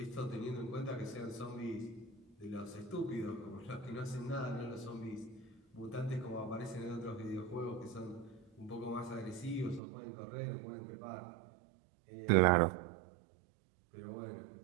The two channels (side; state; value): left; drops out; at 9.8 s